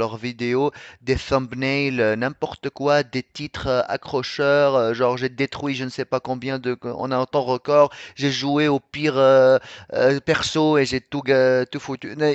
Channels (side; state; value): both; identical; correlation 1.00